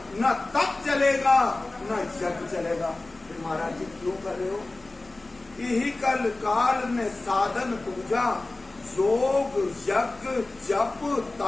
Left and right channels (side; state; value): right; quieter; 3.0 dB